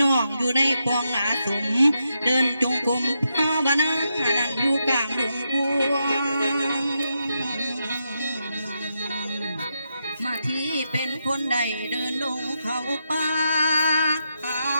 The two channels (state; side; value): inverted; both; correlation -0.84